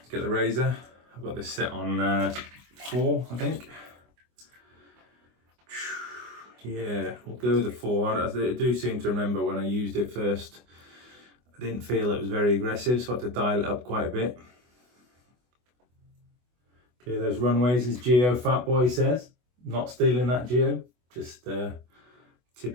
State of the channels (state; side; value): late; left; 24 ms